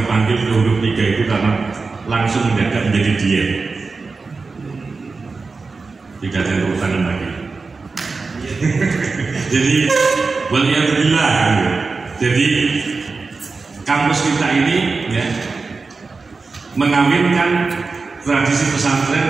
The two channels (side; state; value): left; quieter; 4.2 dB